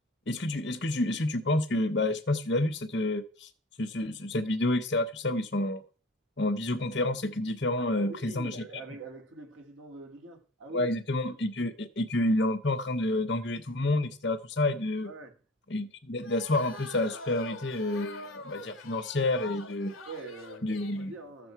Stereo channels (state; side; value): normal; both; correlation 0.40